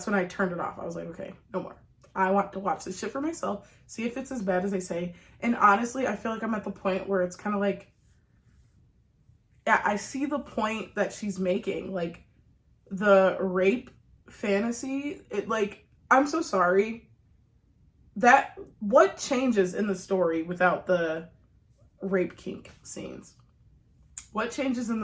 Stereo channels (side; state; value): both; identical; correlation 1.00